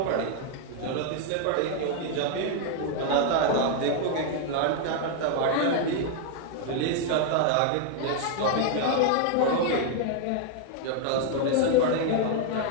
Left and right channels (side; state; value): both; different; correlation 0.00